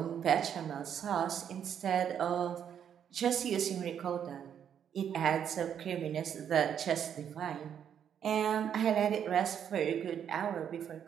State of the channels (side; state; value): left; quieter; 8.7 dB